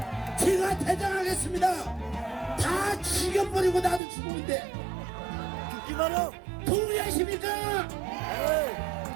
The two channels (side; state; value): left; drops out; at 4.0 s